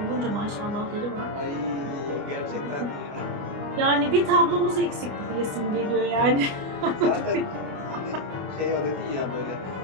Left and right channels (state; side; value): late; left; 29 ms